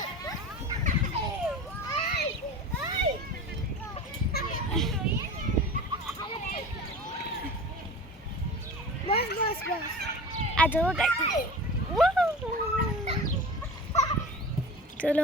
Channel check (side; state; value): both; normal; correlation 0.34